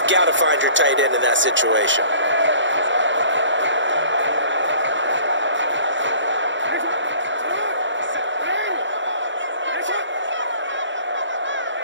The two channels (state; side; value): late; left; 0.54 ms